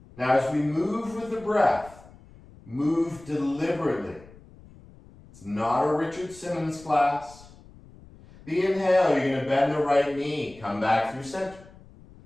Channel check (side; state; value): left; noise; rumble, 22 dB below the sound